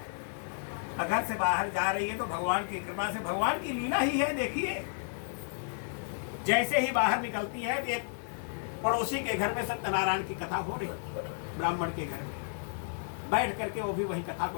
घर से बाहर जा रही है तो भगवान की कृपा से, भगवान की लीला ही है। देखिए, जैसे ही बाहर निकलती है एक पड़ोसी के घर में सत्यनारायण की कथा हो रही, ब्राह्मण के घर में बैठ करके वो भी वही कथा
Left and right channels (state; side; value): silent; right; 56 dB below the other